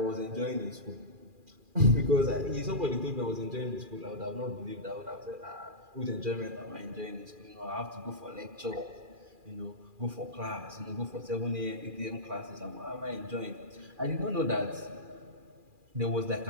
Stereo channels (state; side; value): late; left; 2.4 ms